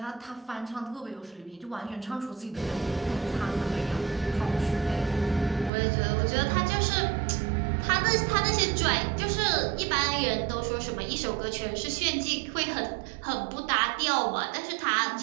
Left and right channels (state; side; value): drops out; left; at 5.7 s